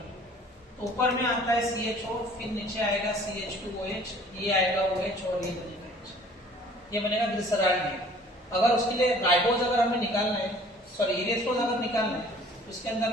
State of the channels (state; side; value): normal; both; correlation 0.52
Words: तो ऊपर में आता है CHO, फिर नीचे आएगा CH2OH, ये आएगा OH और ये बनेगा H, ये बनेगा ग्लिसरॉल्डिहाइड। अगर उसके लिए राइबोज अगर हमें निकालना है, सॉरी इरेथ्रोज अगर निकालना है, तो इसके अंदर